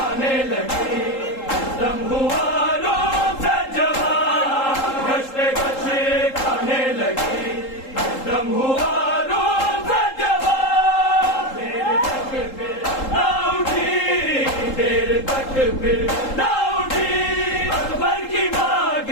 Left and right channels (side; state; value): right; late; 3.8 ms